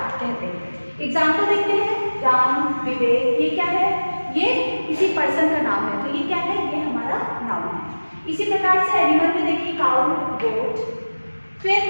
कहते हैं। एग्जाम्पल देखते हैं, राम, विवेक, ये क्या है? ये किसी पर्सन का नाम है, तो ये क्या है? ये हमारा नाउन है। इसी प्रकार से एनिमल में देखिए, काउ, गोट। फिर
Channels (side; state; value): both; inverted; correlation -1.00